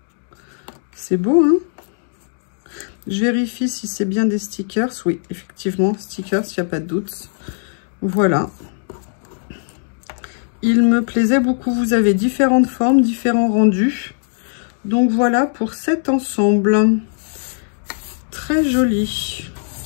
C'est beau, hein? Je vérifie si c'est bien des stickers. Oui, effectivement, stickers, il n'y a pas de doute. Voilà. Il me plaisait beaucoup. Vous avez différentes formes, différents rendus. Donc voilà pour cet ensemble. Très joli.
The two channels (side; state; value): right; silent; digital silence